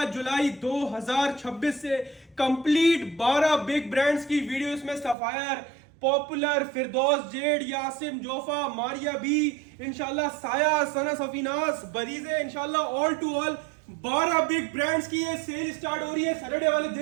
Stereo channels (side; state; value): left; drops out; at 5.2 s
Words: जुलाई 2026 से। कंप्लीट 12 बिग ब्रांड्स की वीडियो, इसमें सफायर, पॉपुलर, फिरदौस जेड, यासिम जोफा, मारिया बी, इंशाल्लाह साया, सना सफीनास, बरीजे, इंशाल्लाह all to all 12 big brands की ये सेल स्टार्ट हो रही है सैटरडे वाले